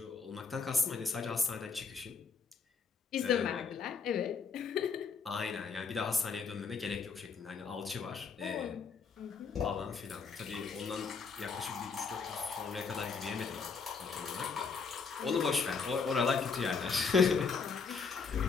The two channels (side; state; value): right; quieter; 5.3 dB